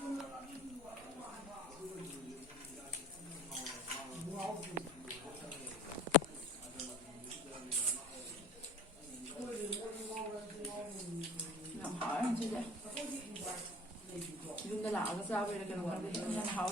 ꯌꯥꯝ ꯍꯥꯎꯋꯦ ꯉꯁꯤꯁꯦ ꯌꯨꯝꯗ ꯂꯥꯛꯑꯒ ꯆꯥꯕꯩꯔ ꯀꯩꯅꯣ ꯈꯪꯗꯦ ꯌꯥꯝ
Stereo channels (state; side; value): normal; both; correlation 0.43